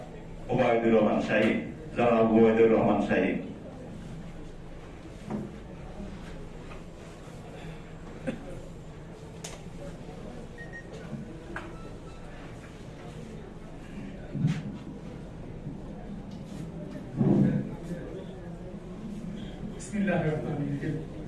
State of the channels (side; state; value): both; identical; correlation 1.00